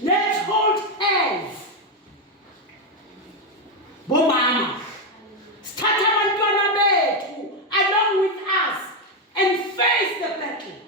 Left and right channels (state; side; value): normal; both; correlation 0.06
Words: Let's hold hands. Bomama. Start abantwana bethu along with us and face the battle.